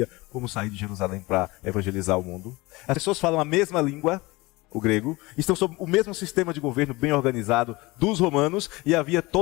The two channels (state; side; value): quieter; right; 22.2 dB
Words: como sair de Jerusalém para evangelizar o mundo. As pessoas falam a mesma língua, o grego, estão sob o mesmo sistema de governo bem organizado dos romanos, e havia